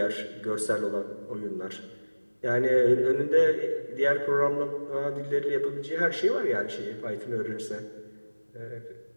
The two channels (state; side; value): inverted; both; correlation -1.00